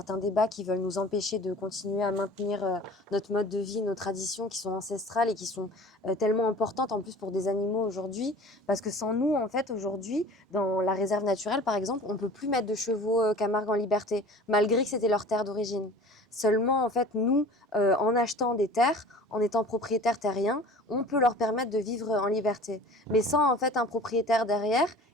débats qui veulent nous empêcher de continuer à maintenir notre mode de vie, nos traditions qui sont ancestrales et qui sont tellement importantes en plus pour des animaux aujourd'hui, parce que sans nous en fait aujourd'hui dans la réserve naturelle par exemple, on peut plus mettre de chevaux Camargue en liberté malgré que c'était leur terre d'origine. Seulement en fait nous en achetant des terres, en étant propriétaires terriens, on peut leur permettre de vivre vivre en liberté. Mais sans en fait un propriétaire derrière,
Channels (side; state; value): both; normal; correlation 0.43